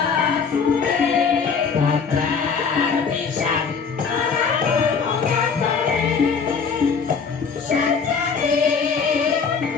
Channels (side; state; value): right; quieter; 5.7 dB